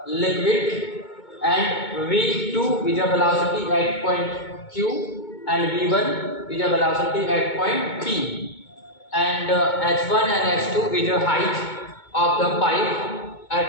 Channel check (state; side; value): late; right; 2.2 ms